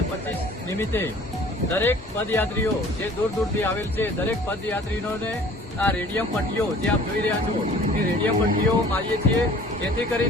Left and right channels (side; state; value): both; normal; correlation 0.50